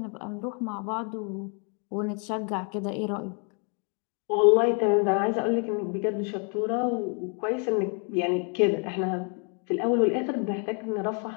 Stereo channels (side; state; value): right; quieter; 38.7 dB